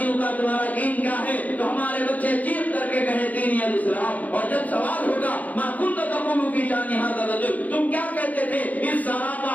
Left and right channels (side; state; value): right; late; 0.077 ms